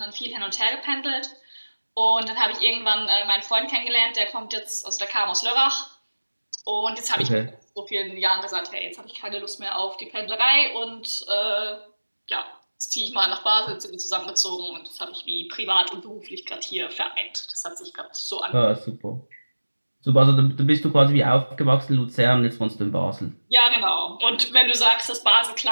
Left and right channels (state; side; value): inverted; both; correlation -1.00